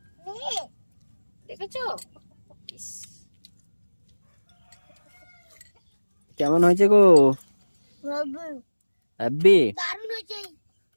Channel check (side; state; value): both; inverted; correlation -1.00